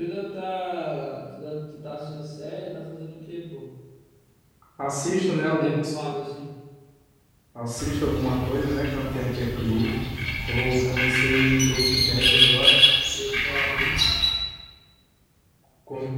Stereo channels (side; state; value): both; identical; correlation 1.00